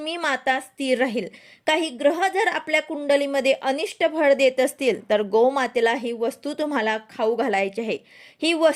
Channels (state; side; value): identical; both; correlation 1.00